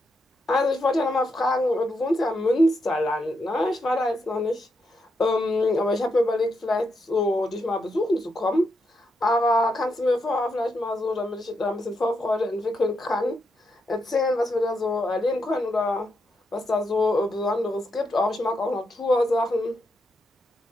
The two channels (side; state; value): both; normal; correlation 0.82